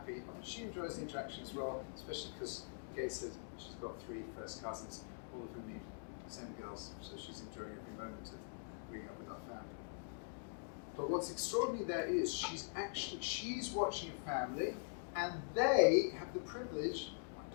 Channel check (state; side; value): silent; right; digital silence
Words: And she enjoys the interaction as well, especially because Gates said she's got 3 first cousins, all of whom need SEM girls, so she's enjoying every moment of being up with our family. But what's extraordinary there is she's watching a family, and they have the privilege, my